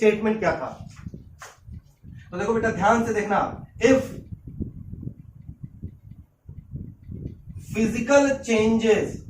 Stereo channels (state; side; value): identical; both; correlation 1.00